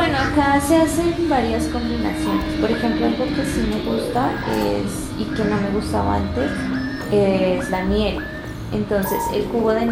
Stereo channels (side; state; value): both; identical; correlation 1.00